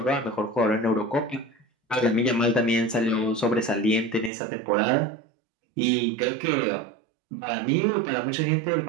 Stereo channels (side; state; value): left; drops out; at 4.3 s